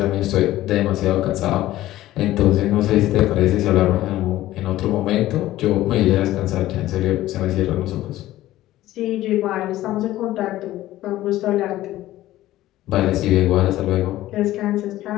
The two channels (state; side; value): quieter; right; 15.2 dB